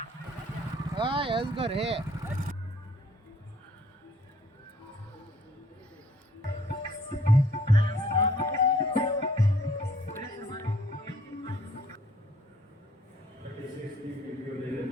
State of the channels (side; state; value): both; normal; correlation 0.60